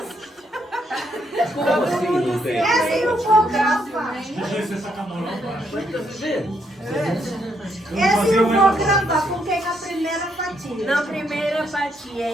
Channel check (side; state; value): both; normal; correlation 0.75